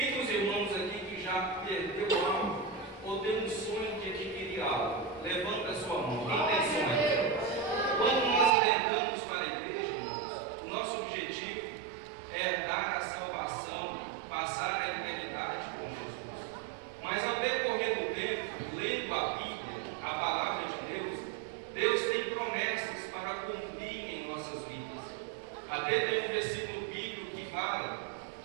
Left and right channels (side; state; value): left; drops out; at 8.5 s